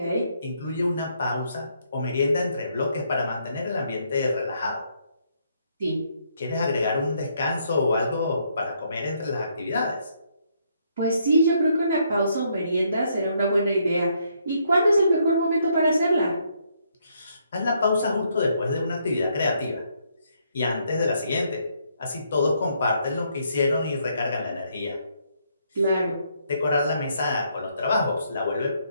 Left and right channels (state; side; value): inverted; both; correlation -0.72